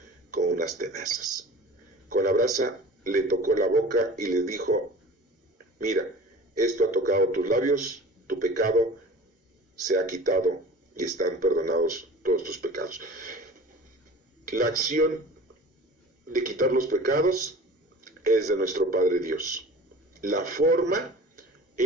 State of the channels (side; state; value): both; normal; correlation 0.41